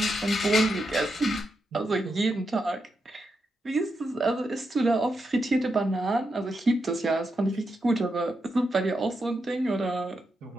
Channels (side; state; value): both; normal; correlation 0.85